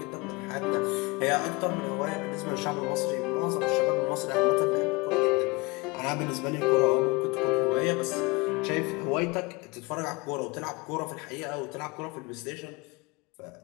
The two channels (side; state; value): right; quieter; 25.7 dB